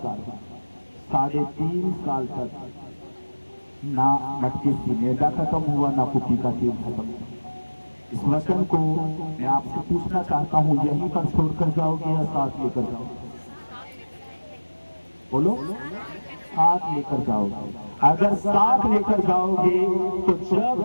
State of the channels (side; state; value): both; inverted; correlation -1.00